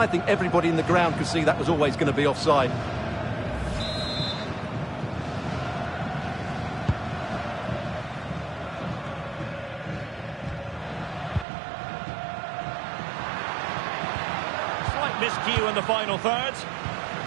think everybody in the ground could see that was always going to be offside. Slight miscue in the final third.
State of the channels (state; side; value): drops out; left; at 11.5 s